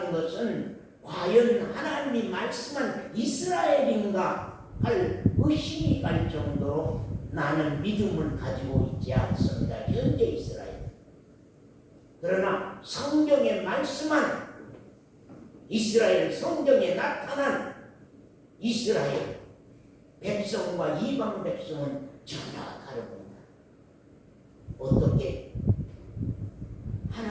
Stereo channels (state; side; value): identical; both; correlation 1.00